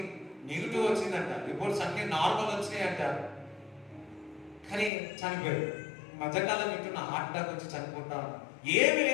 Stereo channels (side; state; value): right; drops out; at 4.9 s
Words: నెగిటివ్ వచ్చిందంట, రిపోర్ట్స్ అన్ని నార్మల్ వచ్చినాయంట, కానీ చనిపోయారు. మధ్యకాలం వింటున్న హార్ట్ అటాక్ వచ్చి చనిపోతా ఏమి